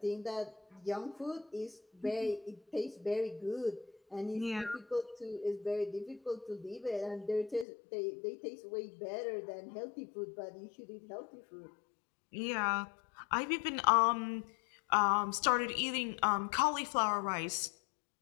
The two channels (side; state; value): right; drops out; at 7.7 s